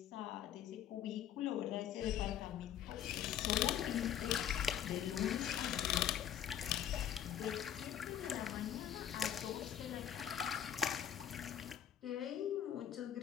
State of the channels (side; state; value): right; quieter; 10.2 dB